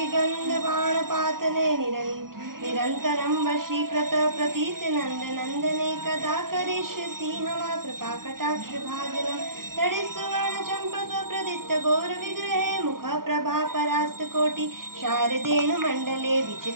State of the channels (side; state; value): left; late; 0.92 ms